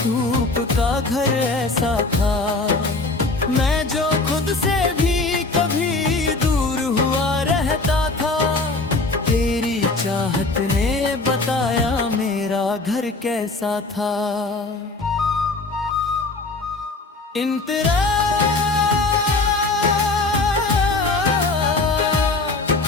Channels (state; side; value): quieter; right; 3.4 dB